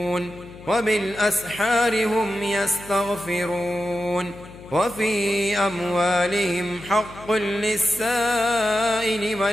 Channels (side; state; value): left; noise; hum, 18 dB below the sound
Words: وبالأسحار هم يستغفرون وفي أموالهم حق للسائل